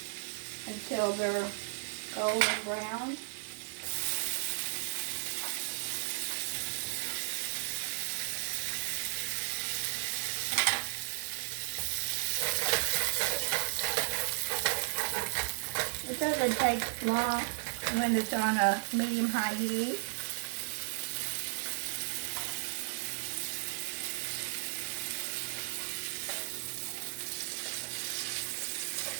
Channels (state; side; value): silent; left; digital silence